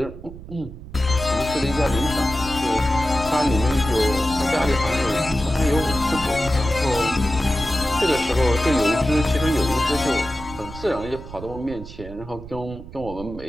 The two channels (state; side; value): noise; right; rumble, 14 dB below the sound